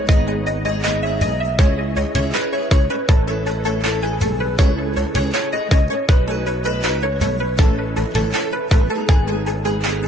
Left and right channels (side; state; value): both; normal; correlation 0.70